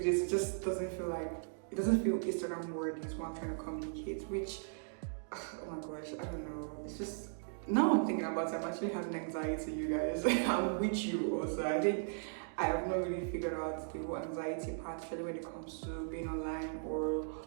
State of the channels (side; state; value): left; silent; digital silence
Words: it just doesn't feel Instagram worthy is what I'm trying to communicate, which, oh my gosh, I don't know. It's just, now I'm thinking about it, I'm actually having anxiety, you guys. I'm with you also. I think I have not really figured out the whole anxiety part, especially when it comes to being online or